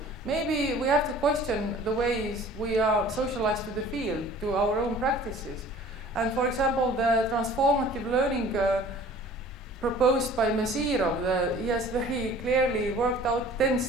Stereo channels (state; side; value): normal; both; correlation 0.48